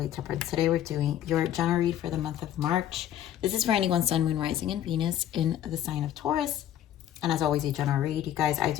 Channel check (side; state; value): right; quieter; 11.2 dB